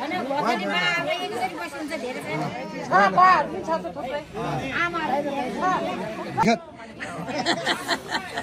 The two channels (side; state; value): both; identical; correlation 1.00